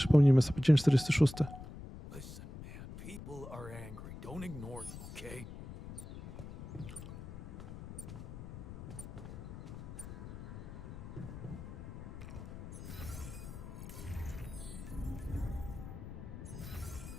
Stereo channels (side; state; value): left; noise; rumble, 11 dB below the sound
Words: sobie dzień 46. Listen, man, people are angry. Don't ignore them, okay?